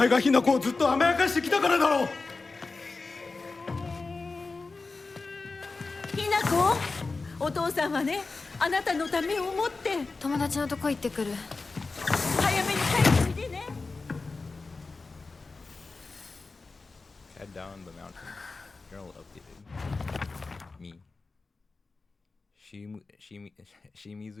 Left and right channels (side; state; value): right; quieter; 3.9 dB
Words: がひなこをずっと甘やかしてきたからだろう。ひなこ、お父さんはね、あなたのためを思って友達のとこ行ってくる。早めに帰っておいでね。Head down the mountain. Journal updated. Me.